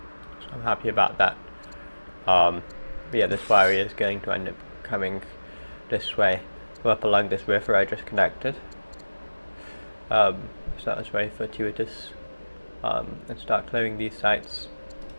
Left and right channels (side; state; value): both; inverted; correlation -1.00